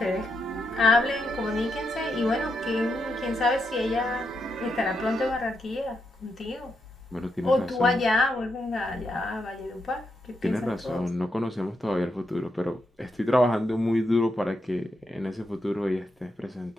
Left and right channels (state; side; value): normal; both; correlation 0.83